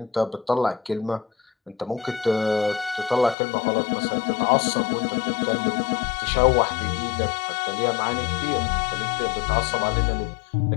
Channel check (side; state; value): right; drops out; at 3.4 s